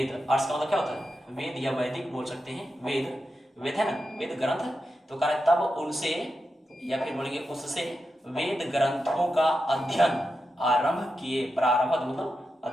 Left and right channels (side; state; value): both; normal; correlation 0.89